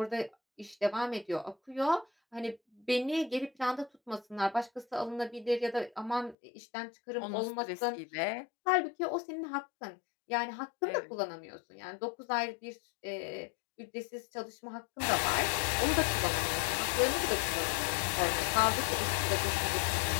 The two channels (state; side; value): drops out; right; at 6.4 s